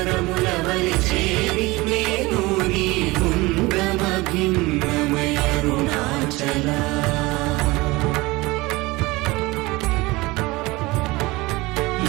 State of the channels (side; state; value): left; quieter; 21.9 dB